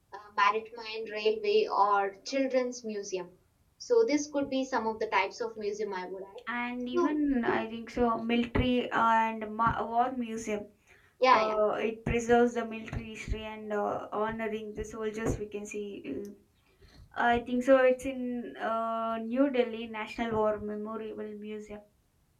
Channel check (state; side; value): identical; both; correlation 1.00